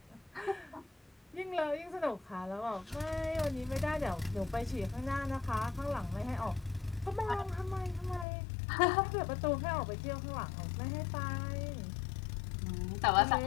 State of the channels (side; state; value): right; drops out; at 8.2 s